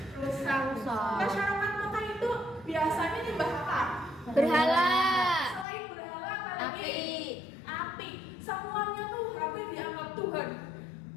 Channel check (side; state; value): right; drops out; at 5.7 s